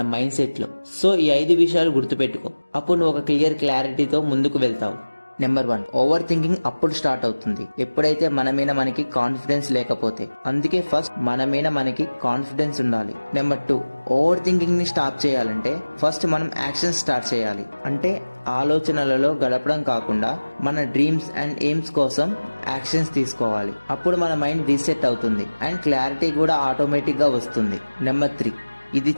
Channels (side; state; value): both; inverted; correlation -1.00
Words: మైండ్ సెట్ లో. సో ఈ 5 విషయాలు గుర్తుపెట్టుకో. అప్పుడు నువ్వు ఒక క్లారిటీతో ముందుకు వెళ్తావు. నెంబర్ 1, ఓవర్ థింకింగ్ అప్పుడు స్టార్ట్ అవుతుంది ఎప్పుడైతే మన మీద మనకి కాన్ఫిడెన్స్ లేకపోతే. అందుకే ఫస్ట్ మన మీద మనకి కాన్ఫిడెన్స్ ఉండాలి. నెంబర్ 2, ఓవర్ థింకింగ్ ని స్టాప్ చేయాలంటే ఫస్ట్ మనం యాక్షన్ స్టార్ట్ చేయాలి. అంటే ఆలోచనలలో గడపడం కాకుండా మన డ్రీమ్స్ అండ్ ఎయిమ్స్ కోసం యాక్షన్స్ తీసుకోవాలి. అప్పుడు మన మైండ్ రీసెట్ అవుతుంది అండ్ క్లారిటీ కూడా ఆటోమేటిక్ గా వస్తుంది. నెంబర్ 3, ఇది